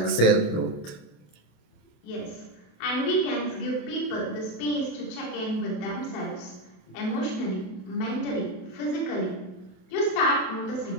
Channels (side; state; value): right; late; 27 ms